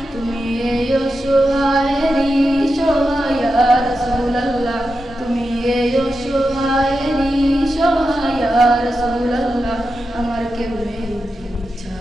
তুমি এই অসহায়েরই সহায় ইয়া রাসূলুল্লাহ, তুমি এই অসহায়েরই সহায় ইয়া রাসূলুল্লাহ। আমার কেউ নেই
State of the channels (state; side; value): normal; both; correlation 0.89